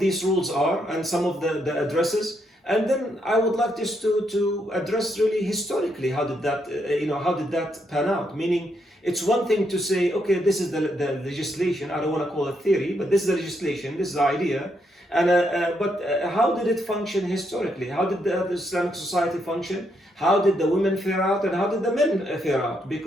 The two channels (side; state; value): both; normal; correlation 0.77